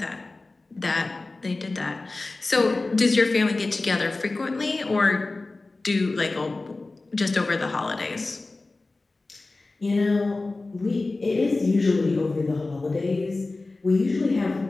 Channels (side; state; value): right; quieter; 3.3 dB